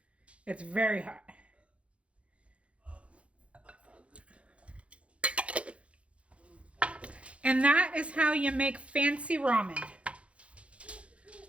It's very hot. And that is how you make fancy ramen.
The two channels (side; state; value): left; late; 0.062 ms